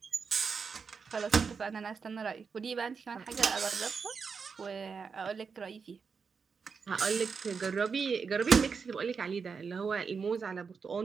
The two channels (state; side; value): quieter; left; 5.6 dB